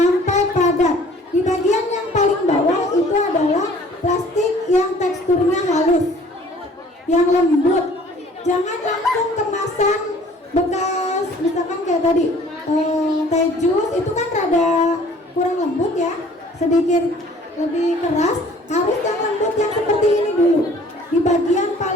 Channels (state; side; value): normal; both; correlation 0.53